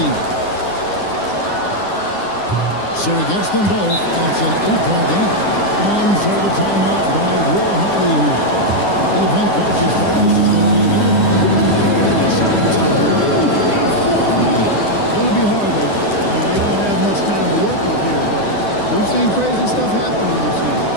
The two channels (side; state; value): right; late; 9.9 ms